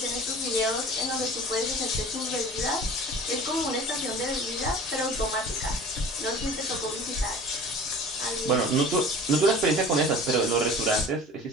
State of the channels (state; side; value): normal; both; correlation 0.42